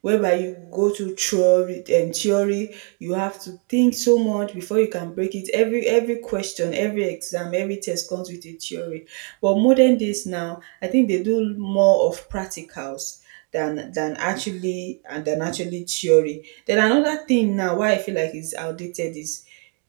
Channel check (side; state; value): left; quieter; 39.5 dB